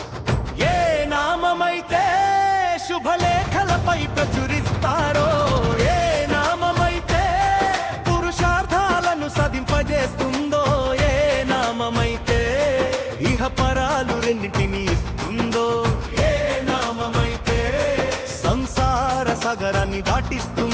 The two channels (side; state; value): both; identical; correlation 1.00